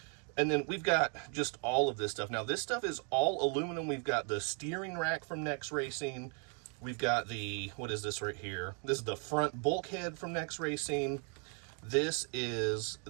And then we've got just all of this stuff. Now, this stuff is all aluminum. We've got the steering rack from Next Racing. We've got the, what is this right here? This is the front bulkhead from Next Racing. This is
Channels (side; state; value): left; quieter; 39.6 dB